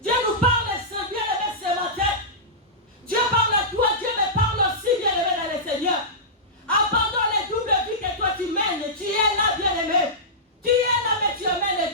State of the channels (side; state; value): both; normal; correlation -0.16